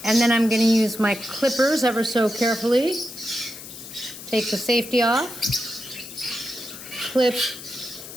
And then I'm going to use my clippers ever so carefully. Take the safety off. Clip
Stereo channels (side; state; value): left; noise; hiss, 13 dB below the sound